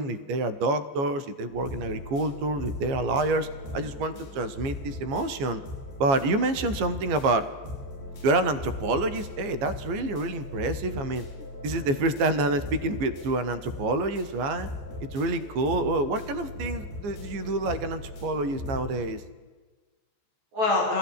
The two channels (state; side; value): late; left; 15 ms